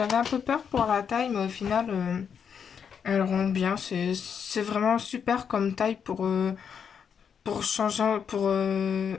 un peu peur pour la taille, mais au final, elle rend bien. C'est vraiment super comme taille pour changer,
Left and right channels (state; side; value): quieter; right; 7.2 dB